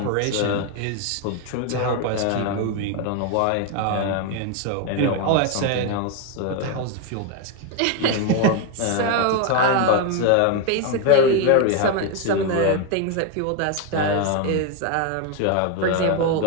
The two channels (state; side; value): different; both; correlation 0.02